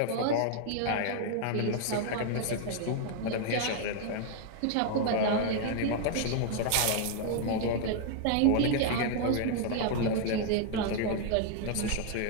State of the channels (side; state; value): both; different; correlation 0.00